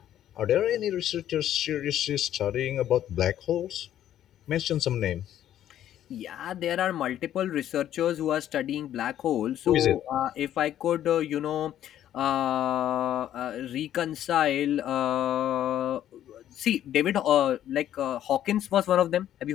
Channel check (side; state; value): right; quieter; 11.5 dB